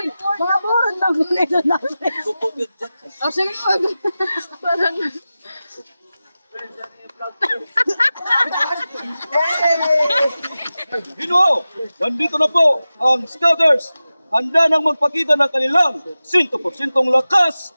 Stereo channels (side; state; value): both; inverted; correlation -0.95